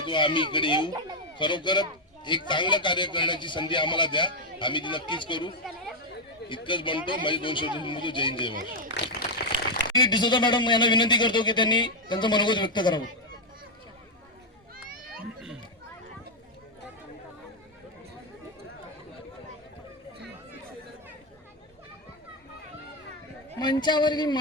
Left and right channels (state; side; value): normal; both; correlation 0.02